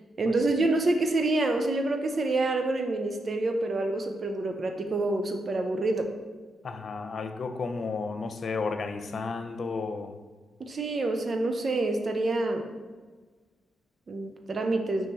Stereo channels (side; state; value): both; normal; correlation 0.82